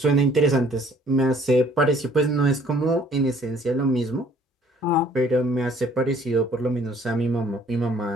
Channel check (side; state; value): both; normal; correlation 0.58